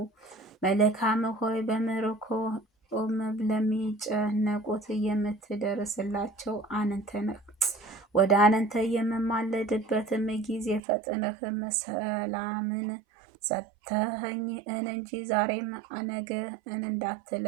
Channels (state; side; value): drops out; left; at 10.8 s